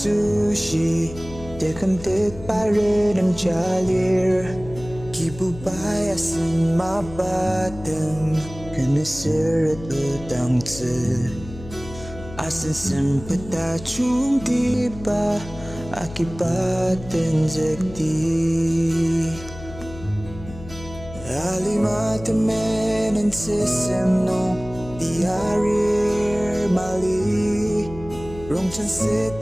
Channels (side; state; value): left; noise; hum, 14 dB below the sound